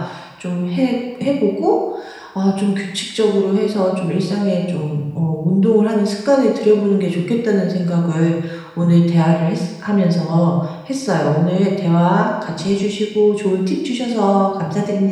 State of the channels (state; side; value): identical; both; correlation 1.00